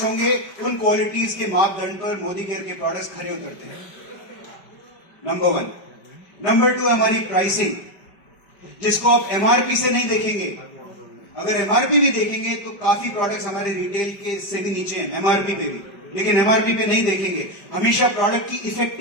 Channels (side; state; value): right; late; 5.2 ms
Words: होंगे। उन क्वालिटीज के मापदंड पर मोदी केयर के प्रोडक्ट्स खरे उतरते हैं। नंबर 1। नंबर 2 हमारी प्राइसिंग, जिसको आप एमआरपी से नहीं देखेंगे। अगर एमआरपी भी देखेंगे तो काफी प्रोडक्ट्स हमारे रिटेल के से भी नीचे हैं एमआरपी पे भी, लेकिन एमआरपी पे नहीं देखेंगे। हमेशा प्रोडक्ट की